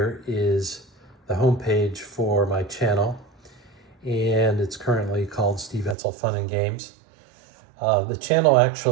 is the homepage for my channel, and it's currently called Steve Etzel Fun and Games. The channel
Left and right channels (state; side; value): drops out; left; at 6.0 s